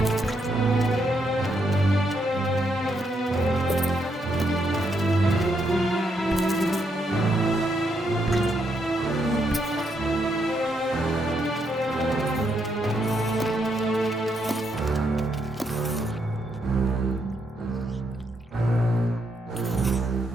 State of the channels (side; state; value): both; normal; correlation 0.77